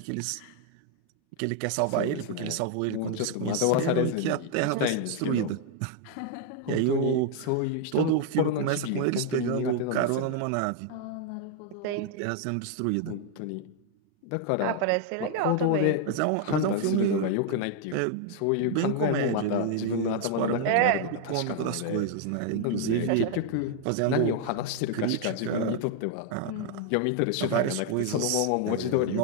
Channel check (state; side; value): different; both; correlation 0.00